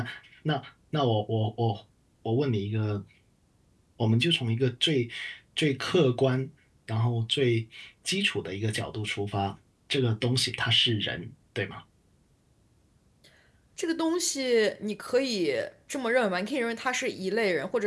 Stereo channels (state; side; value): identical; both; correlation 1.00